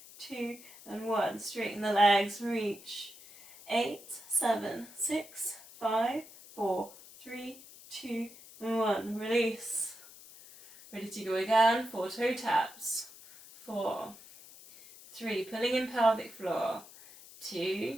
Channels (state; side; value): noise; left; hiss, 19 dB below the sound